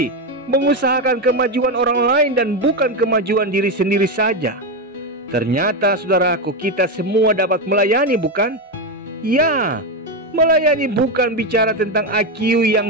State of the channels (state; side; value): normal; both; correlation 0.10